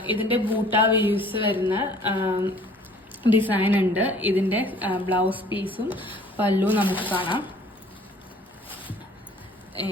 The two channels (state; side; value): normal; both; correlation 0.54